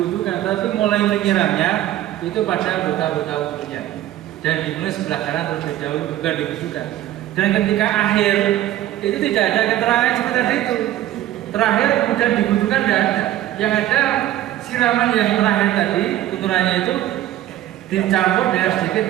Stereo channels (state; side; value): quieter; left; 13.6 dB